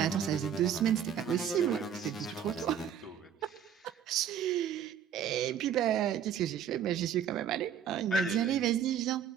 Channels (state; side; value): quieter; left; 8.6 dB